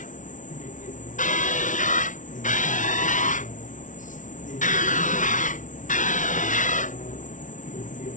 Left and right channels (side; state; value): right; late; 0.37 ms